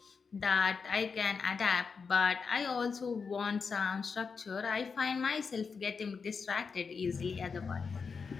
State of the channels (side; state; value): right; quieter; 5.4 dB